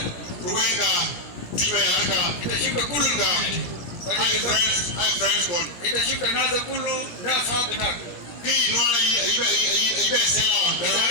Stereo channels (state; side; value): late; right; 17 ms